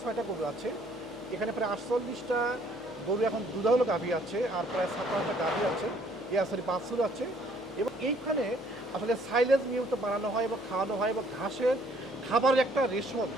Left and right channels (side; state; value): left; noise; hum, 25 dB below the sound